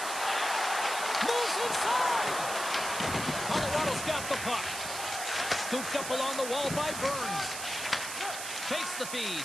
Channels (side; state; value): right; noise; hiss, 6 dB below the sound